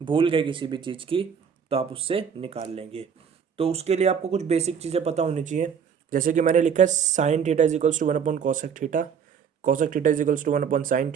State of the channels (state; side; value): quieter; left; 7.1 dB